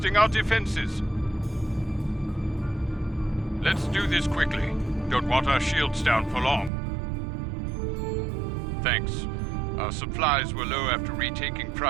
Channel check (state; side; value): drops out; left; at 6.7 s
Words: our defenses. Let's do this quickly. Don't want our shields down for long. Thanks. Our supplies were low after retaking